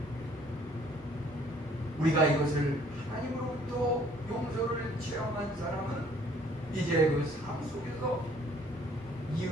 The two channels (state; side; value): normal; both; correlation 0.59